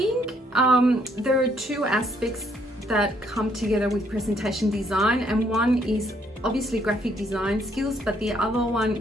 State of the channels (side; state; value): both; normal; correlation 0.69